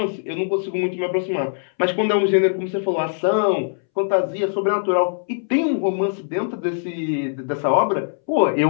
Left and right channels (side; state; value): right; silent; 65 dB below the other